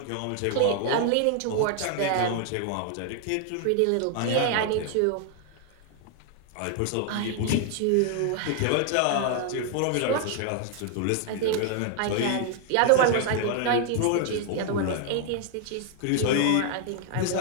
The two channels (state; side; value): different; both; correlation 0.00